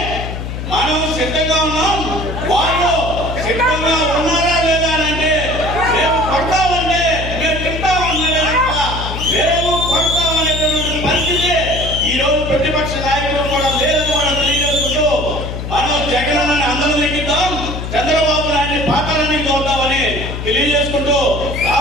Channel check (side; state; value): left; noise; hum, 6 dB below the sound